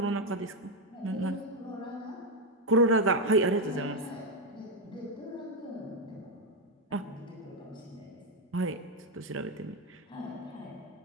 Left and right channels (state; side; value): normal; both; correlation 0.06